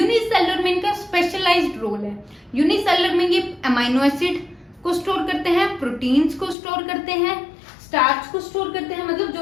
में इनका स्पेशलाइज्ड रोल है। यूनिसेलुलर में ये अमाइनो एसिड को स्टोर करते हैं, प्रोटीन्स को स्टोर करते हैं, स्टार्च को स्टोर करते हैं, मतलब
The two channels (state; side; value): drops out; right; at 6.6 s